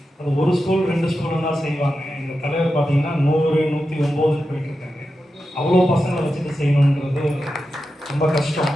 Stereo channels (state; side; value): normal; both; correlation 0.90